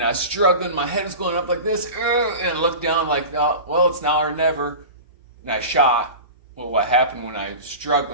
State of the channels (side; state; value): both; inverted; correlation -0.31